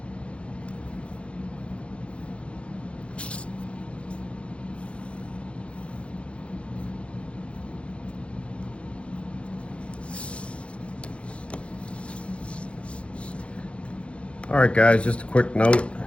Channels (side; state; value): right; late; 0.060 ms